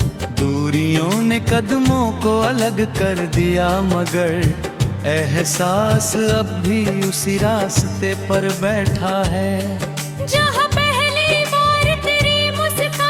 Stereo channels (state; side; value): identical; both; correlation 1.00